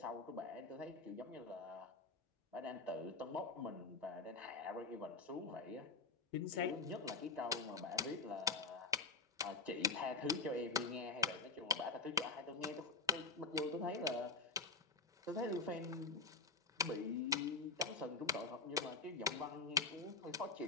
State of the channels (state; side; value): quieter; right; 4.1 dB